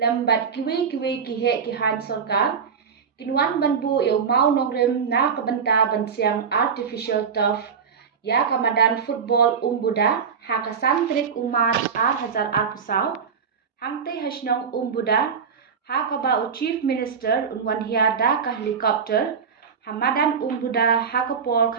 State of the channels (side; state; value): left; quieter; 6.4 dB